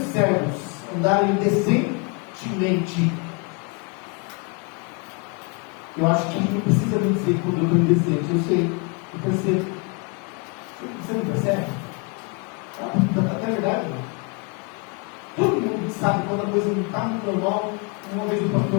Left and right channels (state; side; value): quieter; right; 32.6 dB